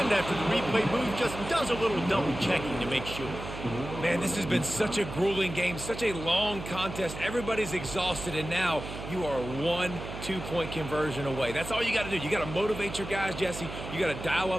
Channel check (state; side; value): noise; right; hum, 9 dB below the sound